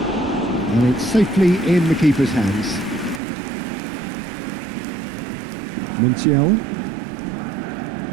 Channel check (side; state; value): left; drops out; at 3.2 s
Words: it's safely in the keeper's hands. Montiel.